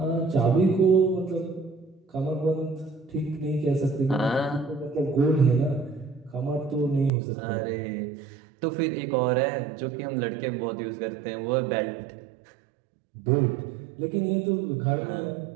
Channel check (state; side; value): drops out; left; at 7.1 s